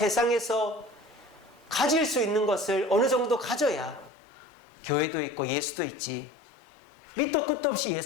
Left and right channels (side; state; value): right; drops out; at 4.1 s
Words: 가질 수 있는 것을 어느 정도 가져야 교회도 있고 예수도 있지, 밑도 끝도 없이